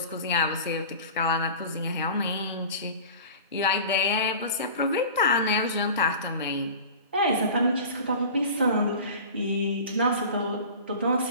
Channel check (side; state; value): both; inverted; correlation -0.38